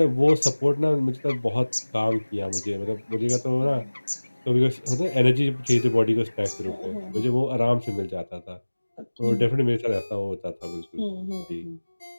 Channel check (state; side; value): inverted; both; correlation -1.00